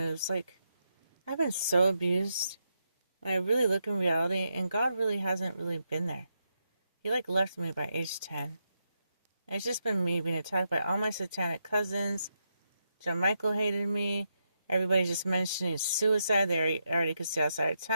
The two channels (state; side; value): inverted; both; correlation -0.84